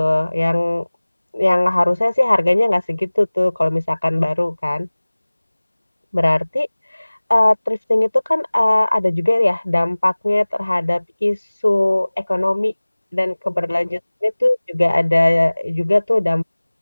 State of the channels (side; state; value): both; inverted; correlation -1.00